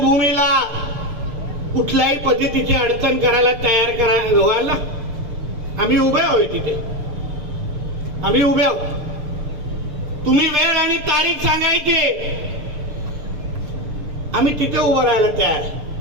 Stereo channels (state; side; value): late; left; 6.7 ms